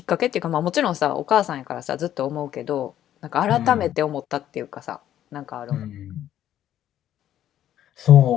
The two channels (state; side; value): quieter; right; 11.6 dB